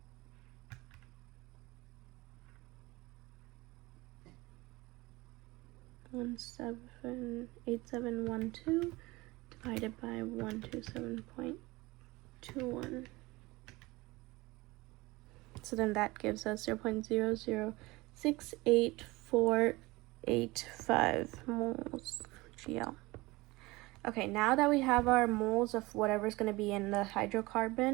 One 8712 divided by 127.21. So then that gives us 0.0068485 moles GL. Okay, now that we have our moles of whatever's going to be in the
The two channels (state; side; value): quieter; left; 21.8 dB